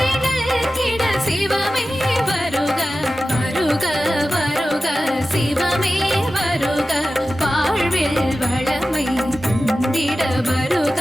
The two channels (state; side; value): normal; both; correlation 0.94